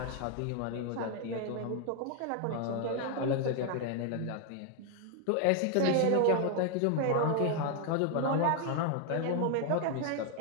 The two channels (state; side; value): different; both; correlation 0.00